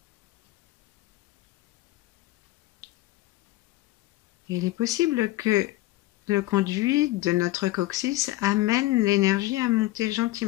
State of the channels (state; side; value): quieter; right; 17.7 dB